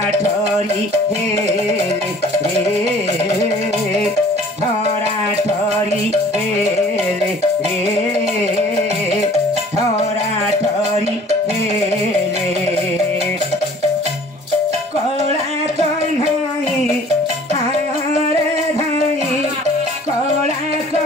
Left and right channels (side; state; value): both; normal; correlation 0.51